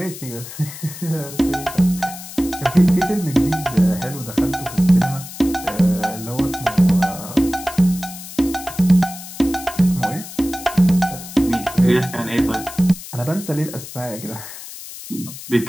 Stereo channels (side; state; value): left; noise; hiss, 13 dB below the sound